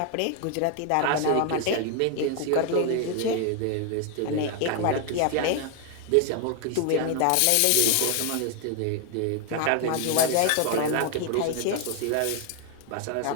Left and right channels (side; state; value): both; different; correlation 0.00